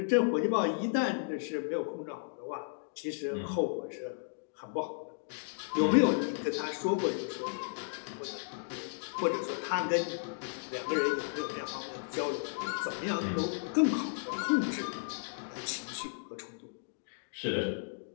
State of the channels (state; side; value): silent; right; digital silence